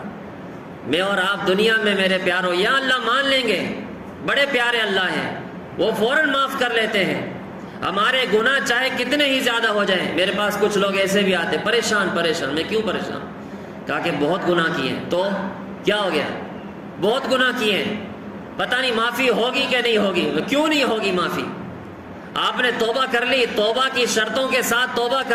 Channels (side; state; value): both; identical; correlation 1.00